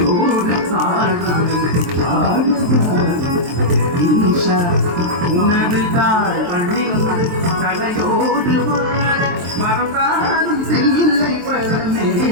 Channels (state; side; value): late; left; 23 ms